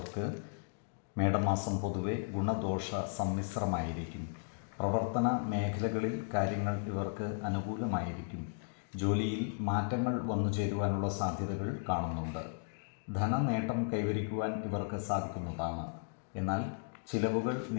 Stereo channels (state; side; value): silent; right; digital silence